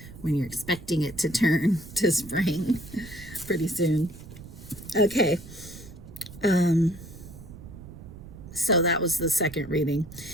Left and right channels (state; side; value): noise; right; rumble, 15 dB below the sound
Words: when you're expecting it to turn to spring pretty soon. Okay. So that was the second reading.